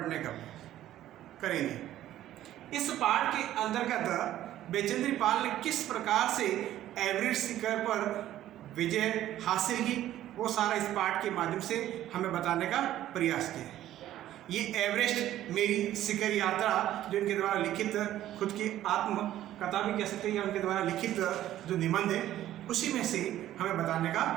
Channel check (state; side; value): quieter; left; 13.1 dB